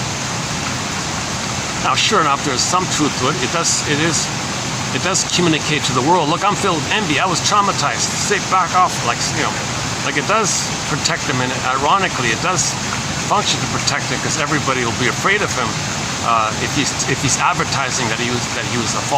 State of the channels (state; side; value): identical; both; correlation 1.00